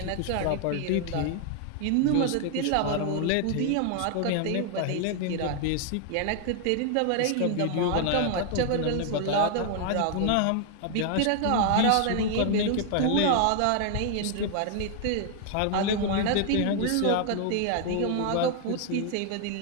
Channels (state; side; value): different; both; correlation 0.00